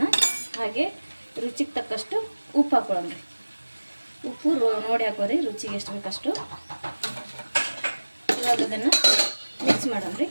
ಹಾಗೆ ರುಚಿಗೆ ತಕ್ಕಷ್ಟು ಉಪ್ಪು ಹಾಕೊಳ್ಳೋಣ ರೀ. ಉಪ್ಪು ನೋಡಿ ಹಾಕೋರಿ, ರುಚಿಗೆ ಎಷ್ಟು ಬೇಕಷ್ಟು. ಇವಾಗ ಅದನ್ನು ಮಿಕ್ಸ್ ಮಾಡೋಣ ರೀ.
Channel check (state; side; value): inverted; both; correlation -1.00